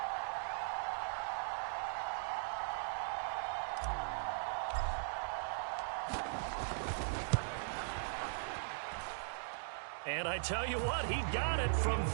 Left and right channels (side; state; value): left; silent; digital silence